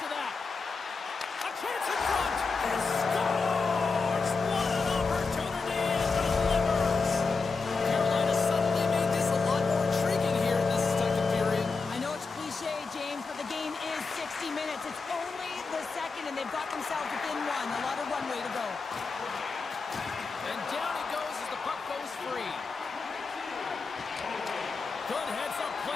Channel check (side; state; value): right; quieter; 4.5 dB